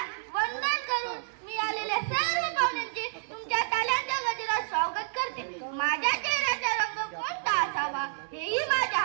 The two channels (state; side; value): silent; left; digital silence